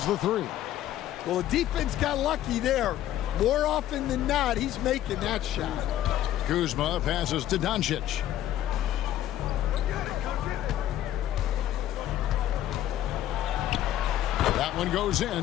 the three. Well, the defense got lucky there. More often than not, he's making that shot. Kuzma passes to Doncic. That one goes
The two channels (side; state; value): right; quieter; 12.5 dB